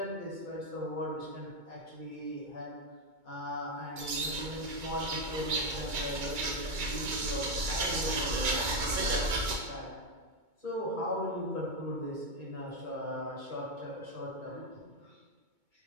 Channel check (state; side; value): late; left; 2.2 ms